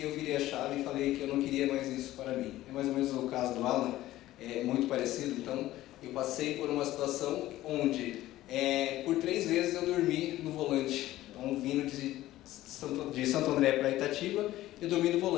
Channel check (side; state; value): right; quieter; 15.3 dB